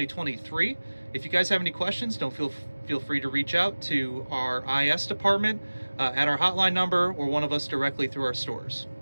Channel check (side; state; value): both; inverted; correlation -1.00